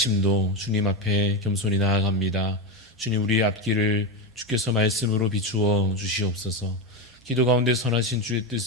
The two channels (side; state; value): both; normal; correlation 0.13